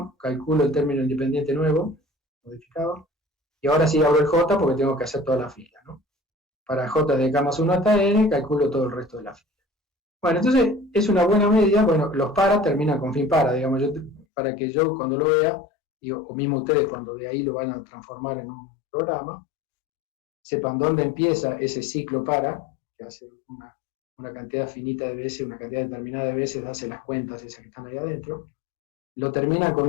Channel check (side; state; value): right; drops out; at 14.2 s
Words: calculo el término independiente nuevo, modificado, y ahora sí abro el J porque tengo que hacer toda la fila, ¿no? Para J de K más 1 hasta n, calculo todo el resto de la fila. Bueno, entonces es una buena medida, bueno, los para terminan con fin para, digamos, para que yo cuando lo vea, o mismo ustedes cuando de ahí lo van a transformar en un programa, sepan dónde empieza ese ciclo para, que hace una cantidad finita de veces, una cantidad determinada de veces, hace las cuentas esas que están ahí adentro, lo termina con